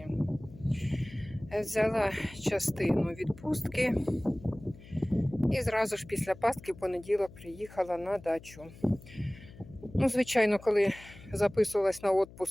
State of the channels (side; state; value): left; noise; hum, 19 dB below the sound